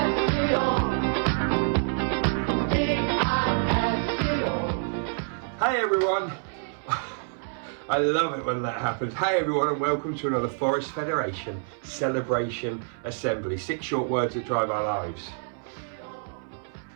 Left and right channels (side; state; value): left; silent; 60 dB below the other